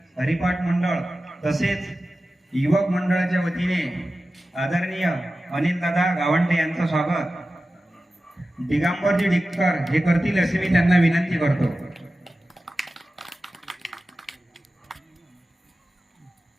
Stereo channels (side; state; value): both; normal; correlation 0.95